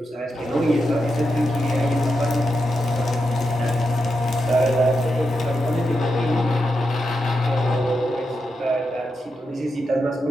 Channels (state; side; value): normal; both; correlation 0.86